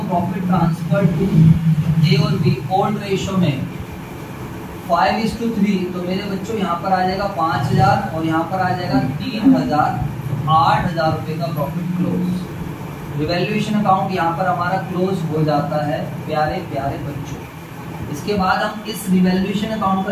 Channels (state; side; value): identical; both; correlation 1.00